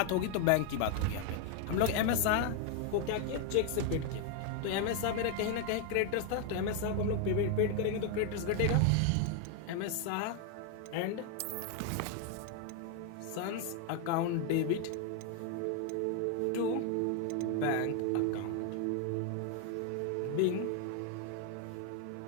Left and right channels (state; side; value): different; both; correlation 0.01